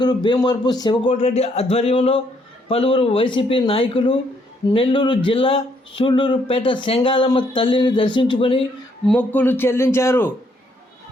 భీమవరపు శివకోటిరెడ్డి ఆధ్వర్యంలో పలువురు వైసీపీ నాయకులు నెల్లూరు జిల్లా సూళ్లూరుపేట సెంగాలమ్మ తల్లిని దర్శించుకొని మొక్కులు చెల్లించారు.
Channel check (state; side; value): normal; both; correlation 0.71